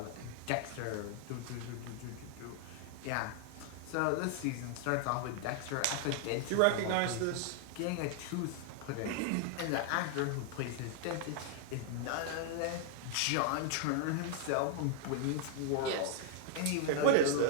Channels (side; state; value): both; different; correlation 0.00